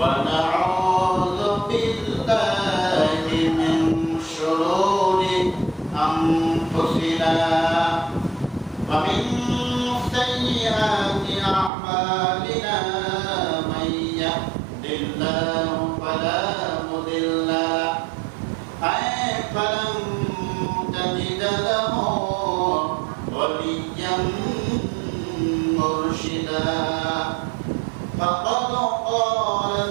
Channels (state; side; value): drops out; left; at 11.7 s